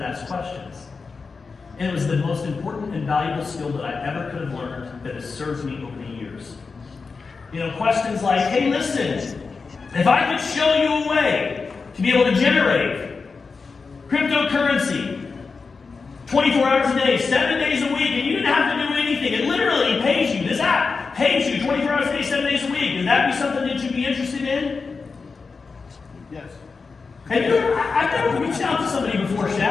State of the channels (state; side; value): quieter; right; 4.7 dB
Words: ask questions. And it was the most important and valuable skill that I ever could have learned that has served me over the years. Questions like, hey, listen, if I could show you a way to be able to generate cryptocurrency 24 hours a day, 7 days a week, and you didn't have to do anything. It literally pays you. This app pays you 24 hours a day, 7 days a week. Would that be something that you'd be interested in? Yes. I've never reached out to somebody before,